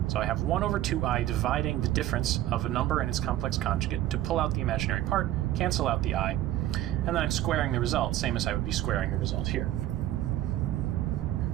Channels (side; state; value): left; quieter; 13.8 dB